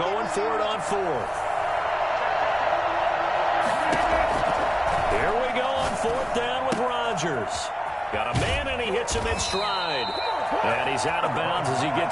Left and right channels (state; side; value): identical; both; correlation 1.00